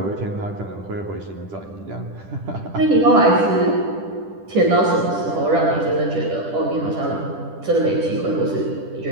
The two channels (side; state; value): left; late; 10 ms